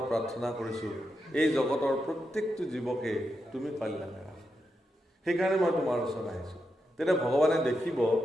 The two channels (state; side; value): normal; both; correlation 0.86